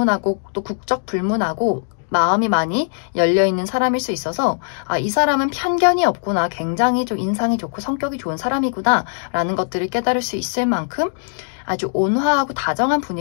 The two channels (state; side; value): silent; right; digital silence